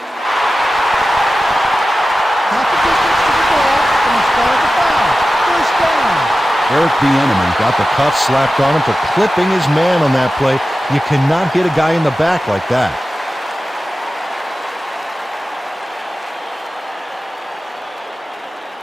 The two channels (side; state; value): both; normal; correlation 0.94